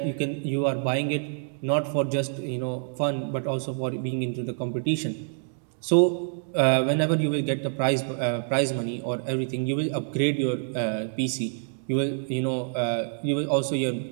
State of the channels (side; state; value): left; silent; digital silence